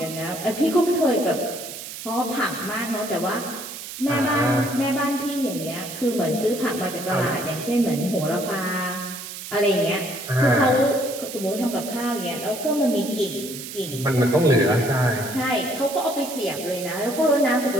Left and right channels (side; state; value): right; noise; hiss, 10 dB below the sound